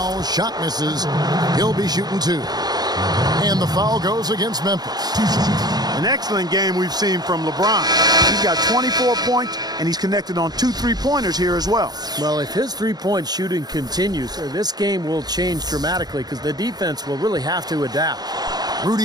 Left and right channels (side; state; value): left; late; 0.19 ms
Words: shot misses. He'll be shooting 2. And the foul goes against Memphis. An excellent game we've seen from LeBron. He's got 24 points, and he's connected on 2 3-pointers here as well. Well, if his three-point shooting continues, this game will change dramatically because the defense will really have to adapt.